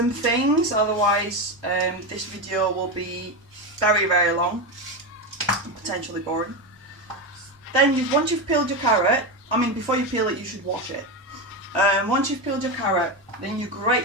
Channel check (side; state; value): both; normal; correlation 0.15